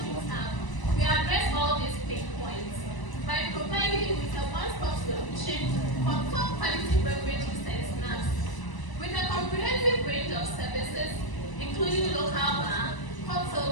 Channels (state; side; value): late; right; 1.0 ms